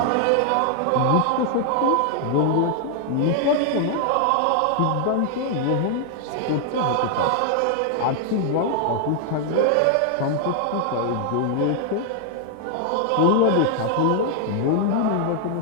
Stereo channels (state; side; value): different; both; correlation 0.00